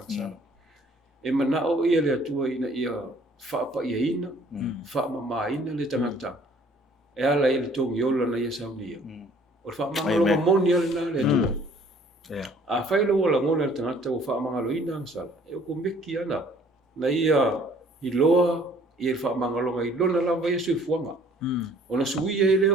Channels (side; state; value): both; normal; correlation 0.57